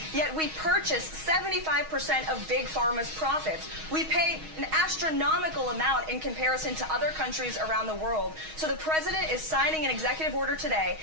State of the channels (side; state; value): left; late; 6.3 ms